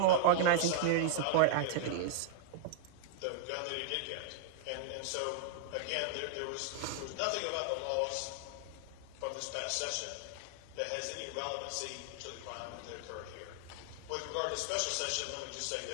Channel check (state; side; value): different; both; correlation 0.00